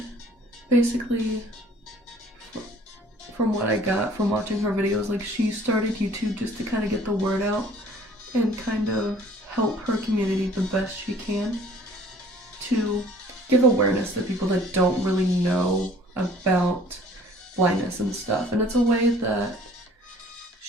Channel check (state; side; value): normal; both; correlation 0.53